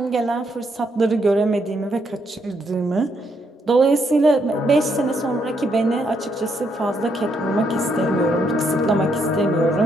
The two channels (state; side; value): normal; both; correlation 0.75